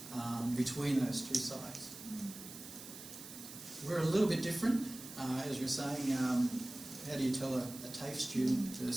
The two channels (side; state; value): right; noise; hiss, 13 dB below the sound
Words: between those two sites. We're a little bit different, as you're saying. How do you tell a TAFE student